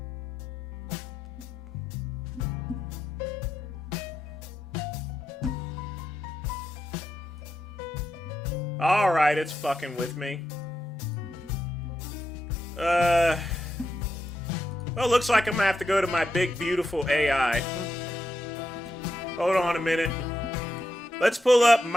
Alright, it's fucking with me. Well, looks like I'm gonna have to go to my big, beautiful AI. Hold on a minute. Let's pull up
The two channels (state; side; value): normal; both; correlation 0.85